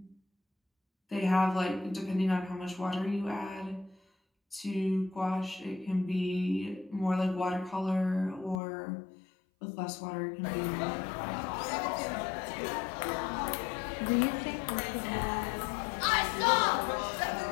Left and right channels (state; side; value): drops out; right; at 8.6 s